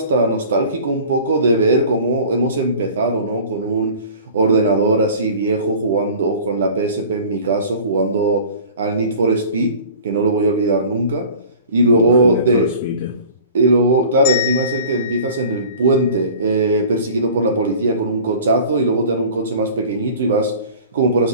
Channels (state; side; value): inverted; both; correlation -0.43